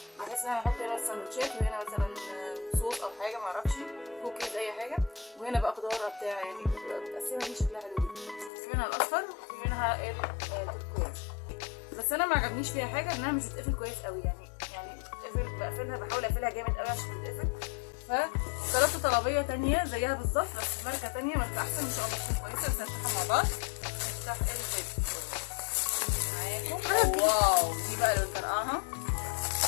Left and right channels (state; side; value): drops out; right; at 8.5 s